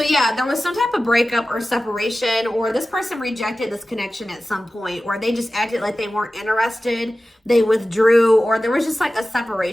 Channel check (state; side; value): normal; both; correlation 0.95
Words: yeah, there was some type of breakup or separation, or this person rejected this connection at some point, or they just acted like they weren't interested. They withdrew, or there was just like a